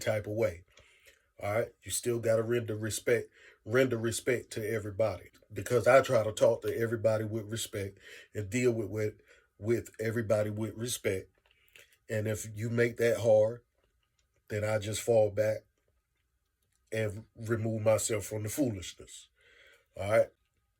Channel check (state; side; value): identical; both; correlation 1.00